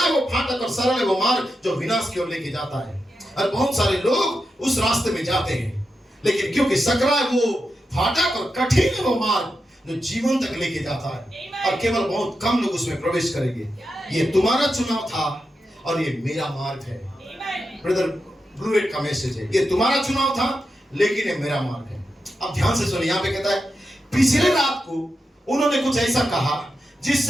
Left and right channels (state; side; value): normal; both; correlation 0.88